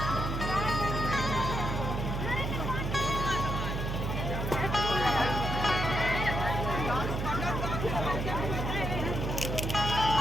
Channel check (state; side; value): noise; right; hum, 2 dB below the sound